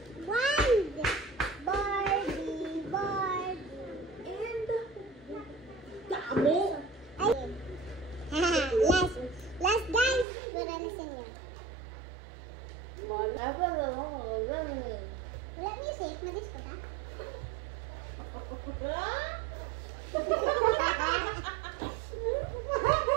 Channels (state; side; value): drops out; left; at 10.2 s